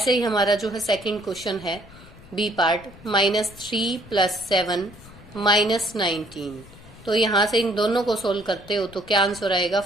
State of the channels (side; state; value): left; noise; rumble, 20 dB below the sound